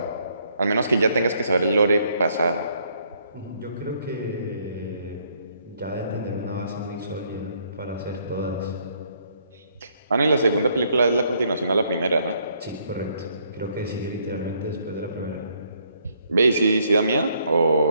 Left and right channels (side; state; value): both; inverted; correlation -0.69